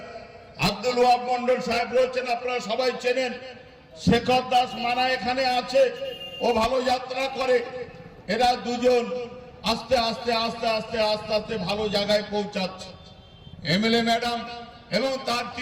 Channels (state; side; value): identical; both; correlation 1.00